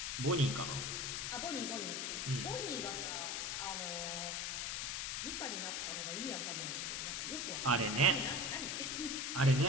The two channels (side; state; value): left; noise; hiss, 1 dB below the sound